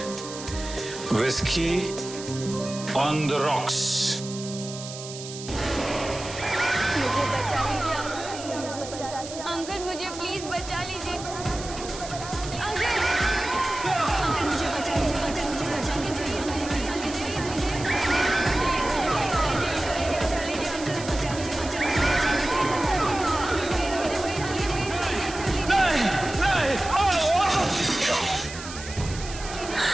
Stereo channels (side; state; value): right; noise; hiss, 12 dB below the sound